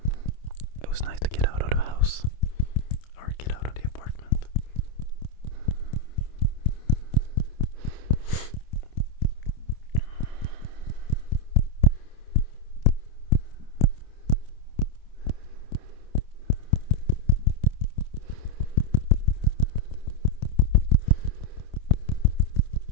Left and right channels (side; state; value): right; late; 27 ms